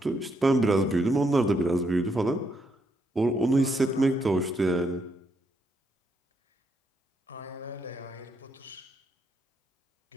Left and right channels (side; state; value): both; normal; correlation 0.77